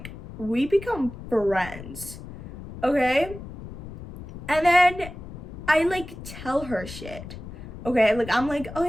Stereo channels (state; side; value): noise; left; rumble, 13 dB below the sound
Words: we become friends, okay? And then I like tell her shit, okay? Like, I'm like, oh